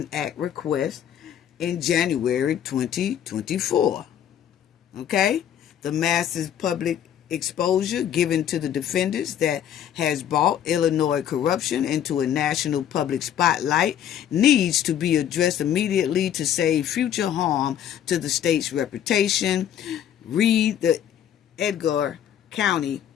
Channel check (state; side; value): quieter; right; 10.0 dB